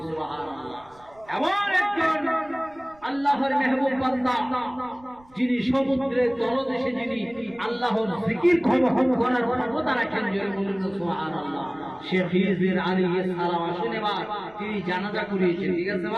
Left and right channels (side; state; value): right; noise; rumble, 28 dB below the sound